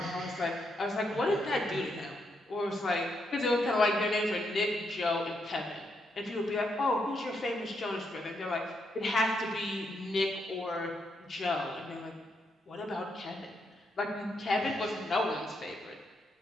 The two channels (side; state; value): both; normal; correlation 0.79